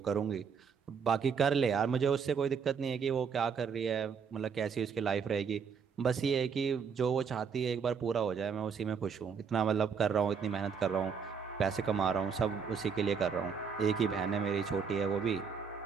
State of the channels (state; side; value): quieter; left; 6.3 dB